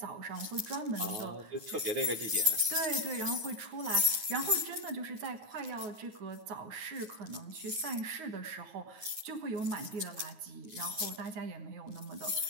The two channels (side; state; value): left; late; 9.4 ms